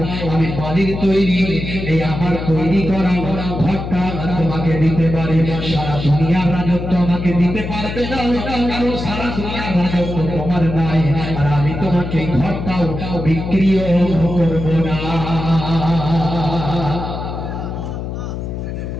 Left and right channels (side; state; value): left; noise; hum, 6 dB below the sound